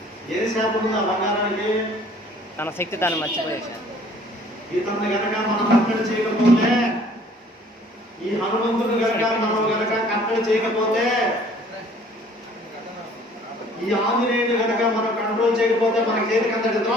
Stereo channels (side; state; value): both; normal; correlation 0.55